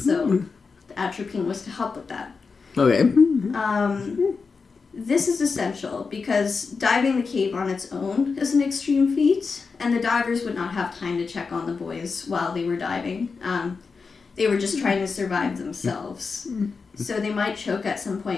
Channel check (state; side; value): quieter; right; 4.9 dB